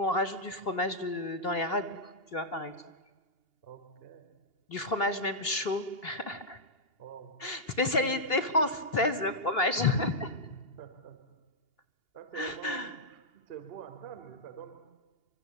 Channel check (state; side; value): late; right; 2.8 ms